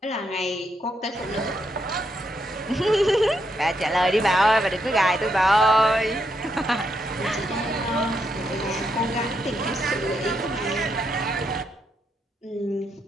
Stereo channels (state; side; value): normal; both; correlation 0.79